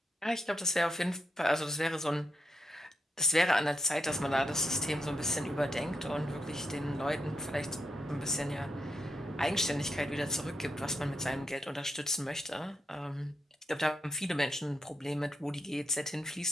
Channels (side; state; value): both; normal; correlation 0.82